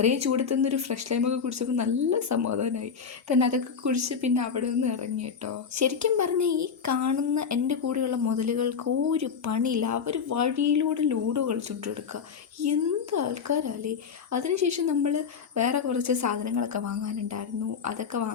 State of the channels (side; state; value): right; quieter; 6.4 dB